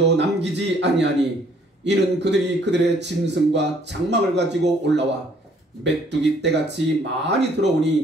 남기지 아니하니 이는 그들이 그들의 짐승과 장막을 가지고 올라와 메뚜기 떼같이 많이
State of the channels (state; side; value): normal; both; correlation 0.62